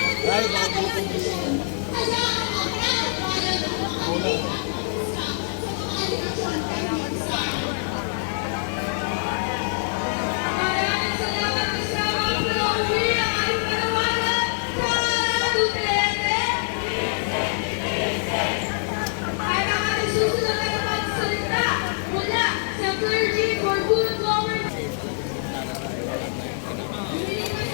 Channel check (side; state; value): right; silent; digital silence